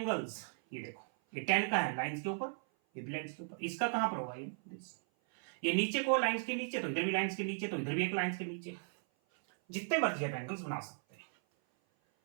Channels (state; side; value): silent; left; 53 dB below the other